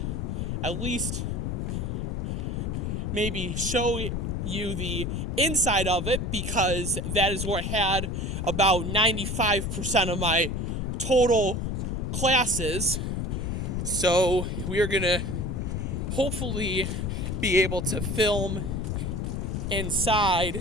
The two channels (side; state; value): left; noise; rumble, 2 dB below the sound